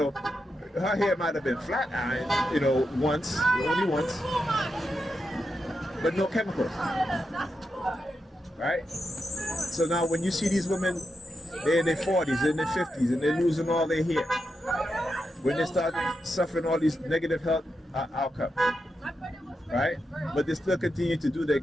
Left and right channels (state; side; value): normal; both; correlation 0.86